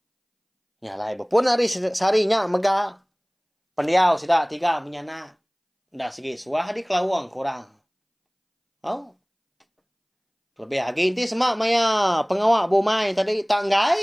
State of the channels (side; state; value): both; identical; correlation 1.00